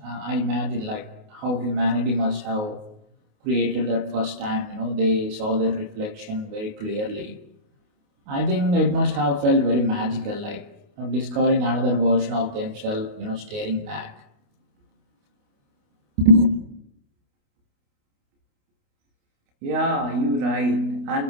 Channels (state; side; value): late; left; 28 ms